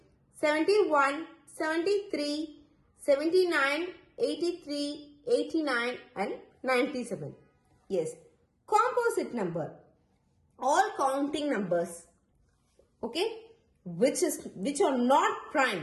71, 73, 79, 83, 89 and 97. Yes. Composite number. All counting numbers. Okay. Which are not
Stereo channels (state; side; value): identical; both; correlation 1.00